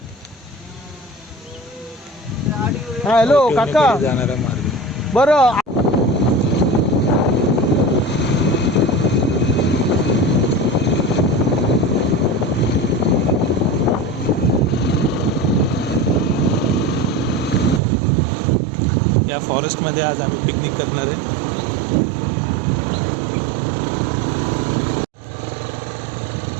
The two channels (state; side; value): drops out; left; at 17.8 s